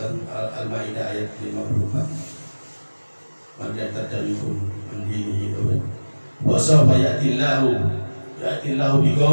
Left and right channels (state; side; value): inverted; both; correlation -1.00